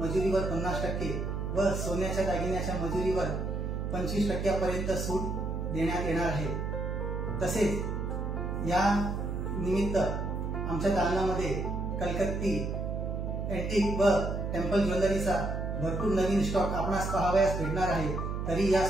50% व सोन्याच्या दागिन्याच्या मजुरीवर 25% पर्यंत सूट देण्यात येणार आहे। तसेच या निमित्त आमच्या दालनामध्ये कलकत्ती, एंटिक व टेम्पल ज्वेलरीचा भरपूर नवीन स्टॉक आपणास पाहावयास भेटणार आहे। तरी या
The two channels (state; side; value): noise; right; hum, 2 dB below the sound